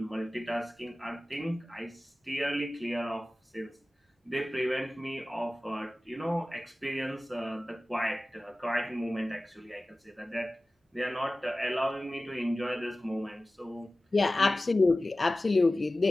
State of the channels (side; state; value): both; normal; correlation 0.96